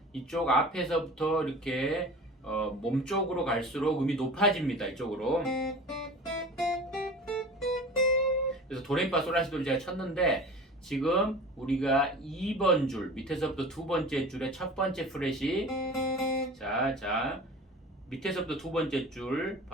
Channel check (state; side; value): normal; both; correlation 0.38